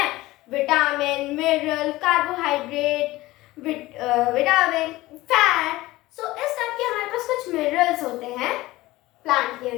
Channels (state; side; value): quieter; right; 18.4 dB